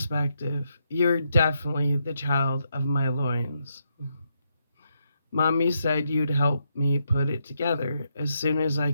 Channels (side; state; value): both; inverted; correlation -0.80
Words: You're definitely the child of my loins. Mommy said you'd help me put it together as soon as I